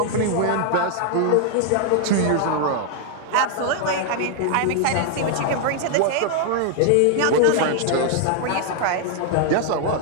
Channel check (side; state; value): both; different; correlation 0.00